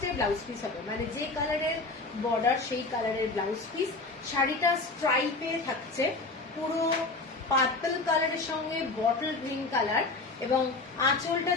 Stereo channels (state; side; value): quieter; right; 3.5 dB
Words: ব্লাউজ পিস হবে, মানে যে কালারের বর্ডার সেই কালারের ব্লাউজ পিস। শাড়িটা স্ট্রাইপে থাকছে, পুরো পার্পল কালারের সঙ্গে বটল গ্রিন কালার, এবং আঁচলটা